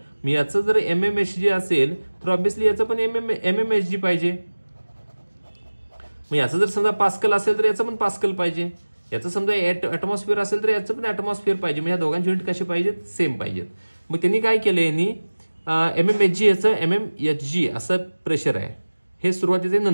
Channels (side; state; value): both; inverted; correlation -1.00